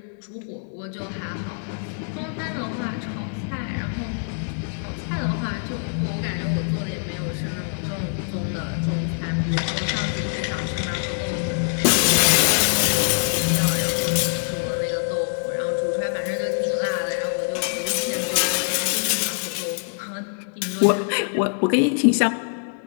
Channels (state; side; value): silent; right; digital silence